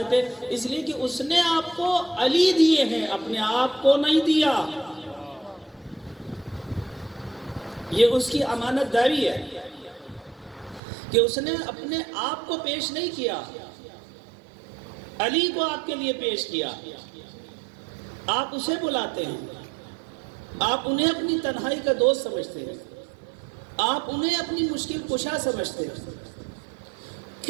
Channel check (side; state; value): left; drops out; at 10.8 s